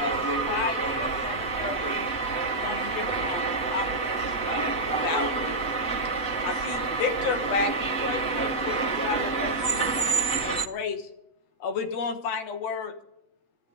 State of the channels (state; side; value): late; right; 8.1 ms